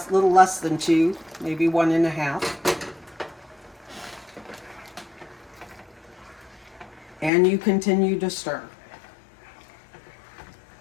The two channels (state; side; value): drops out; right; at 7.3 s